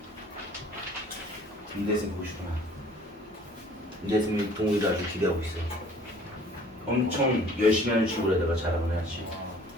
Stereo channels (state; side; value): normal; both; correlation 0.52